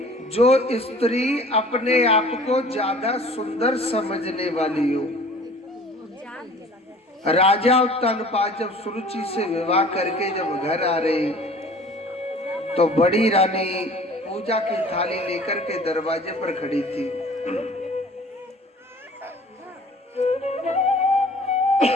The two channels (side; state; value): both; normal; correlation 0.48